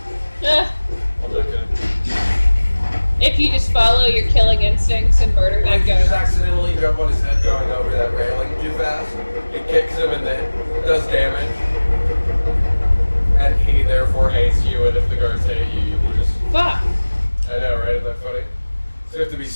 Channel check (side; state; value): both; inverted; correlation -1.00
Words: I'm not gonna. If you just follow your killing instincts and murder that If you just guy. accidentally jump on his head going over that railing too fast, it kicks him and then does damage. And he therefore hates you, and if the guards hate you, you will just Fuck. I know, right? Isn't that funny? So you have to be